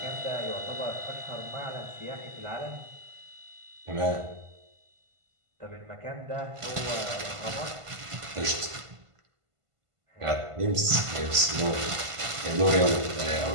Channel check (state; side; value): late; left; 1.5 ms